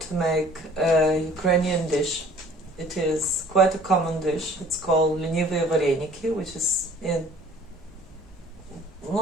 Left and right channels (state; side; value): normal; both; correlation 0.53